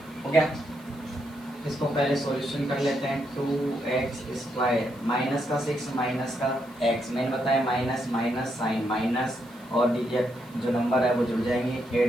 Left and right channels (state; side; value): noise; right; hiss, 27 dB below the sound